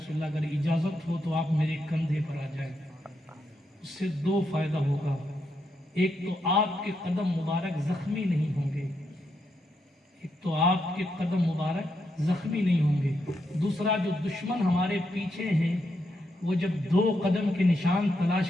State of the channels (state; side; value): normal; both; correlation 0.81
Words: اللہ اگر اجازت ہو تو آپ میرے کندھے پر آ جائیں۔ اس سے دو فائدہ ہوگا، ایک تو آپ کے قدم مبارک زخمی نہیں ہوں گے، ایک تو آپ کے قدم مبارک زخمی نہیں ہوں گے، دوسرا جو دشمن ہمارے پیچھے ہیں وہ جب دو قدم کے نشان